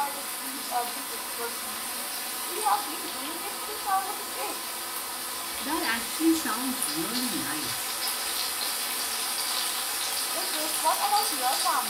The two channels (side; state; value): both; identical; correlation 1.00